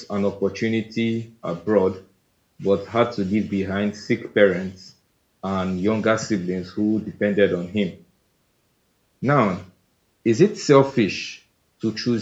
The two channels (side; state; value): both; identical; correlation 1.00